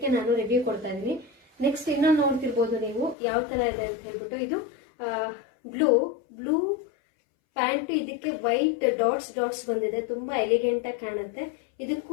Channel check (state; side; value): drops out; right; at 3.2 s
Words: ನಾನು ರಿವ್ಯೂ ಕೊಡ್ತಾ ಇದ್ದೀನಿ. ನೆಕ್ಸ್ಟ್ ಇನ್ನೊಂದು ನೋಡ್ತಿರ್ಬೋದು ನೀವು ಯಾವ ತರ ಇದೆ ಅಂತ ಹೇಳ್ಬಿಟ್ಟು. ಇದು ಬ್ಲೂ ಪ್ಯಾಂಟ್, ಇದಕ್ಕೆ ವೈಟ್ ಡಾಟ್ಸ್ ಬಂದಿದೆ, ತುಂಬಾ ಎಲಿಗೆಂಟ್ ಆಗಿ ಕಾಣುತ್ತೆ.